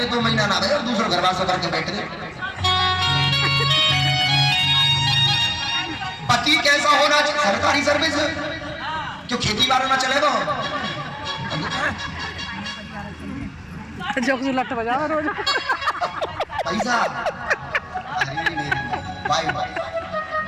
2 महीना ना रहे और दूसरा घर वास करके बैठ गए। पति कैसा होना चाहिए? सरकारी सर्विस क्यों खेती बाड़ी ना चलेगा? जोक जुलट बजा रोज पैसा बाय बाय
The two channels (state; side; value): identical; both; correlation 1.00